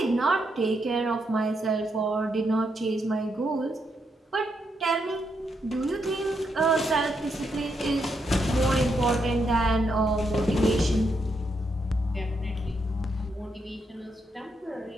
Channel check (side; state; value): both; normal; correlation 0.80